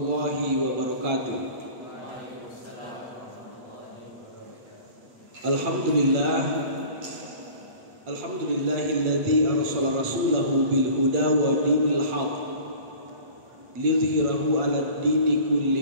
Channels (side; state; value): left; late; 8.7 ms